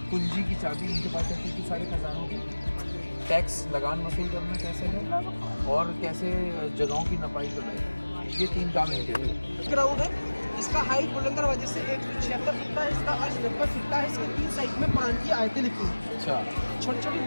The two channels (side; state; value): both; inverted; correlation -1.00